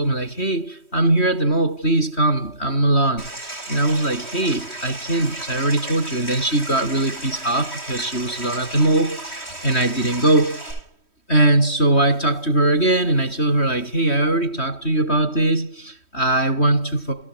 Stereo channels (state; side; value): late; right; 3.1 ms